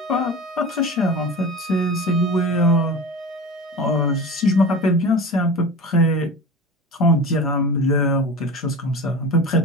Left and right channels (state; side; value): normal; both; correlation 0.32